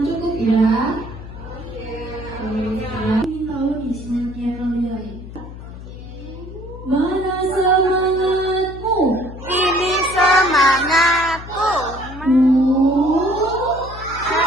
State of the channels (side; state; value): left; noise; hum, 13 dB below the sound